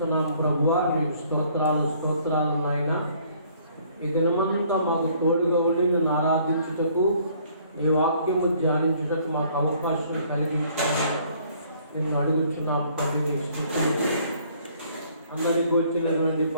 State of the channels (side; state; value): both; inverted; correlation -0.60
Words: ప్రభువా, నీకు స్తోత్రాలు నాయన. ఈ దినమంతా మాకు తోడుగా ఉండి నిన్ను ఆరాధించుటకు, నీ వాక్యము ధ్యానించుటకు మాకు అవకాశం కలిగించాలని నేను అడుగుతున్నాం. తండ్రి, నీకు స్తుతులు. అందరికీ వచ్చినటువంటి